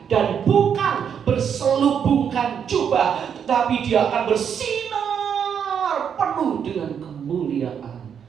dan bukan berselubungkan jubah, tetapi dia akan bersinar penuh dengan kemuliaan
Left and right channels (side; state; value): left; quieter; 7.8 dB